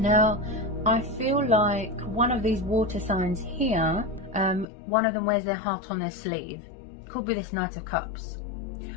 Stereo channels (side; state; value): right; drops out; at 4.7 s